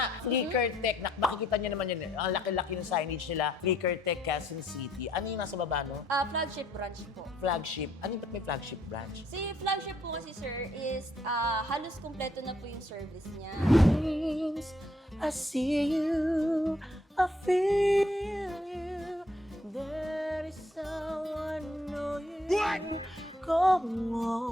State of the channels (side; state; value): both; normal; correlation 0.69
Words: Flicker Tech. Makikita niyo naman yun. Ang laki-laki ng signage nila. Flicker Tech, Quezon City. Ano yung nasa baba, no? Flagship branch po. Flagship. Ano yung may flagship branch? Si flagship po kasi sir is halos kumpleto na po yung service niya. I see you, I feel you. There is someone know you. Come